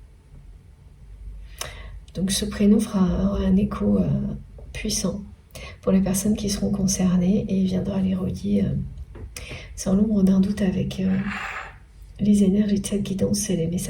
Donc ce prénom aura un écho puissant pour les personnes qui seront concernées et viendra les relier sans l'ombre d'un doute avec les énergies de cette guidance et les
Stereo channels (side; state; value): both; identical; correlation 1.00